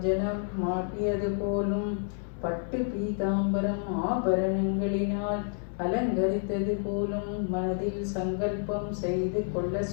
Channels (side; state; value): right; silent; 58 dB below the other